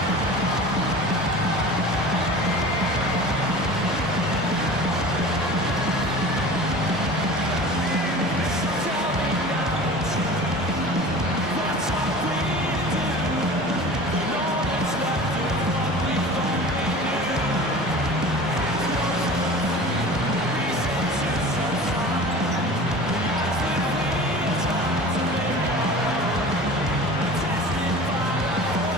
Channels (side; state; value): both; normal; correlation 0.38